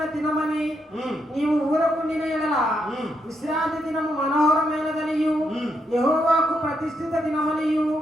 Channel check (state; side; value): normal; both; correlation 0.79